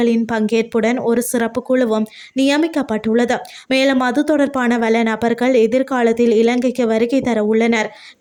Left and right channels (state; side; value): identical; both; correlation 1.00